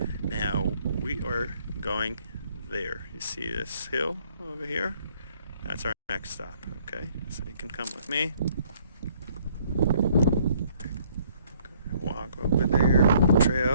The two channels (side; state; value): both; inverted; correlation -0.63